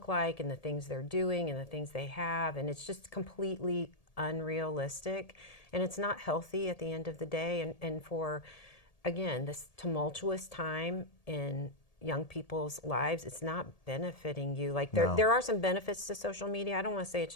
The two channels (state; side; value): late; right; 1.7 ms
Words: like and the things they're doing and the things they have, and it's just completely unrealistic, and it's not healthy at the end of the day. And for, again, this tumultuous time in young people's lives, it's not benefiting you. Like, No. there are some benefits to social media. I don't want to say it's